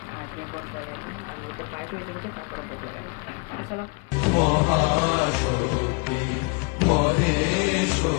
আজকে গড় বই না। আর মধ্যে পায়েস হয়েছে বলতে তারপরে ভোগ লাগাই। চলো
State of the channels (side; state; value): right; quieter; 30.8 dB